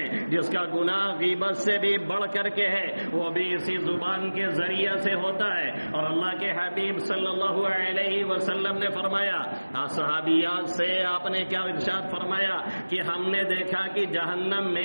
جس کا گناہ غیبت سے بھی بڑھ کر کے ہے، وہ بھی اسی زبان کے ذریعے سے ہوتا ہے۔ اور اللہ کے حبیب صلی اللہ علیہ وسلم نے فرمایا، صحابیات سے آپ نے کیا ارشاد فرمایا کہ ہم نے دیکھا کہ جہنم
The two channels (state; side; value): inverted; both; correlation -1.00